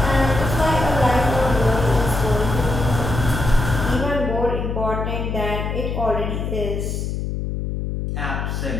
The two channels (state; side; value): noise; left; hum, 3 dB below the sound